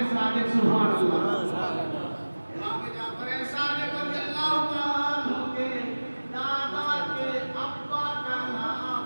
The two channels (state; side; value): inverted; both; correlation -1.00